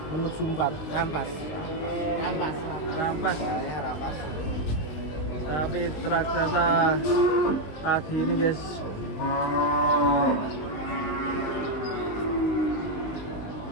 Menuju 4. Rampas. Rampas. Ya, rampas. Tapi raksasa pagi ini, guys.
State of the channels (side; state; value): right; late; 19 ms